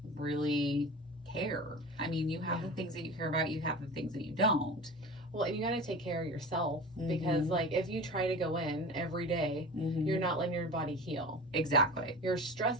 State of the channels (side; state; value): both; normal; correlation 0.34